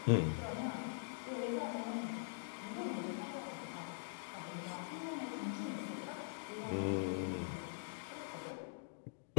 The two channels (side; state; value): right; silent; digital silence